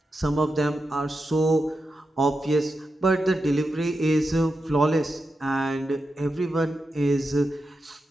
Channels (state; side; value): normal; both; correlation 0.89